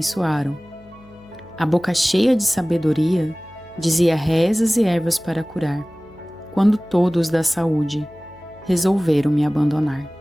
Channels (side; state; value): left; noise; hum, 25 dB below the sound